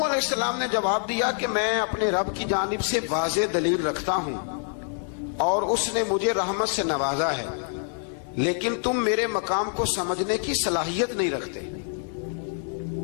السلام نے جواب دیا کہ میں اپنے رب کی جانب سے واضح دلیل رکھتا ہوں اور اس نے مجھے رحمت سے نوازا ہے، لیکن تم میرے مقام کو سمجھنے کی صلاحیت نہیں رکھتے،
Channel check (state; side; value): silent; right; 56 dB below the other